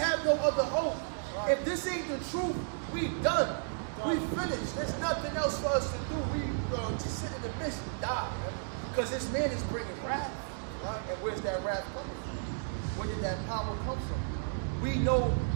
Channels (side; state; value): left; silent; digital silence